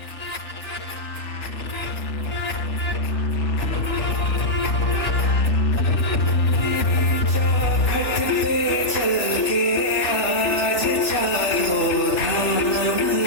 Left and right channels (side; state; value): right; late; 3.4 ms